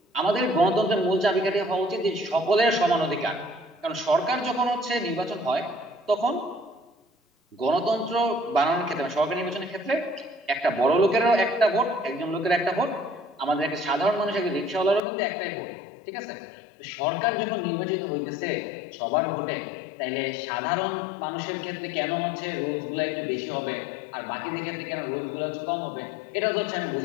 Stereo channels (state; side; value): drops out; right; at 15.0 s